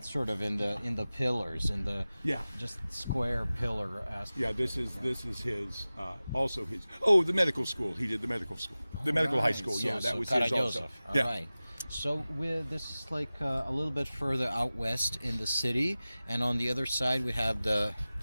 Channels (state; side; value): inverted; both; correlation -0.97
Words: sort of in the pillars, in the just square pillar aspect. Yeah, this is his, also his. Oh, the medical school. He did the medical school, the medical high school. So, that was his also. Right. So this is like a little bit further out west in the city, and on the other side we have the